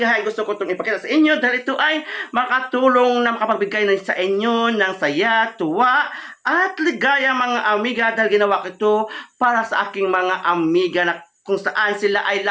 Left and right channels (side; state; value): both; identical; correlation 1.00